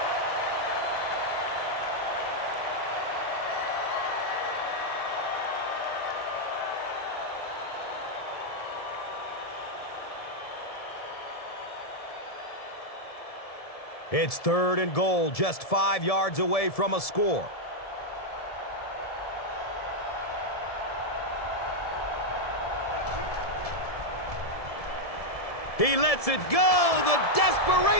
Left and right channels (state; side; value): late; right; 1.7 ms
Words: It's 3rd and goal, just 5 yards away from a score. He lets it go, the